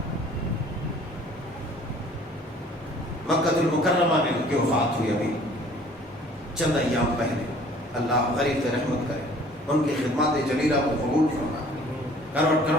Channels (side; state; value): both; normal; correlation 0.53